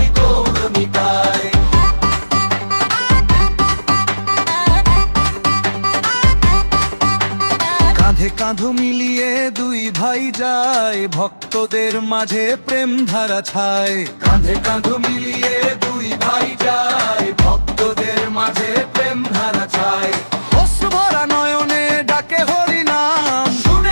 গৌর নিতাই। কাঁধে কাঁধ মিলিয়ে দুই ভাই যায়, ভক্তদের মাঝে প্রেম ধারা ছায়। কাঁধে কাঁধ মিলিয়ে দুই ভাই যায়, ভক্তদের মাঝে প্রেম ধারা ছায়। অশ্রু ভরা নয়নে ডাকে হরি নাম,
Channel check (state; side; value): inverted; both; correlation -1.00